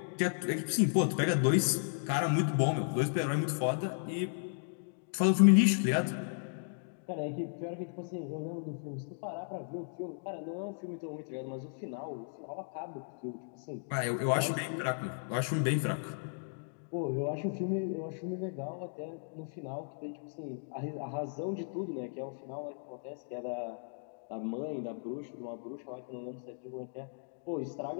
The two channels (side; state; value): right; silent; digital silence